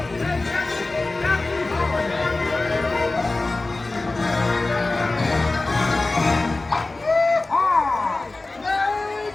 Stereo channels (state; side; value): quieter; right; 3.2 dB